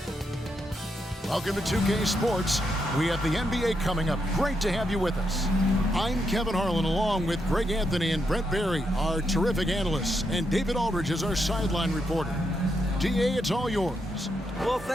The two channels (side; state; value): both; normal; correlation 0.81